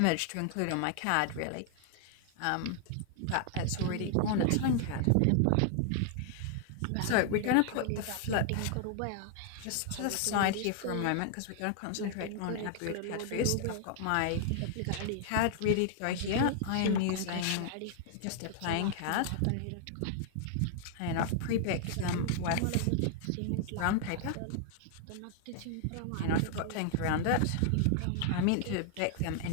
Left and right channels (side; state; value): both; different; correlation 0.00